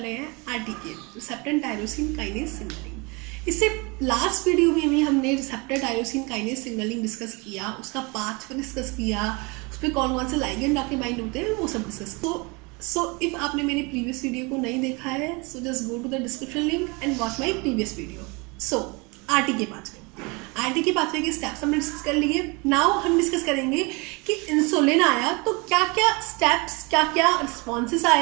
हैं RTK, receptor tyrosine kinase signaling. इससे लास्ट वीडियो में भी हमने receptor tyrosine kinase signaling discuss किया, उसका पाथ डिस्कस किया, उस पर कौन कौन से लाइगेंड आके बाइंड होते हैं वो सब डिस्कस। सो इफ आपने मेरी प्रीवियस वीडियो को नहीं देखा है, so just go to the description link and watch my previous video. So RTK pathway के स्टेप्स हमने डिस्कस कर लिए। नाउ हम डिस्कस करेंगे कि इंसुलिन आया तो क्या क्या स्टेप्स, क्या क्या रिस्पॉन्सेस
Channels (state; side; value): quieter; left; 28.2 dB